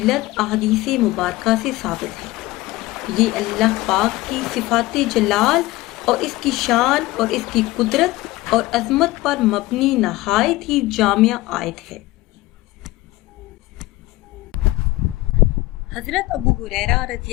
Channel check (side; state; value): right; quieter; 18.8 dB